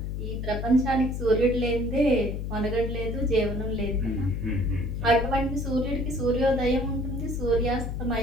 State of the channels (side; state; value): left; noise; hum, 4 dB below the sound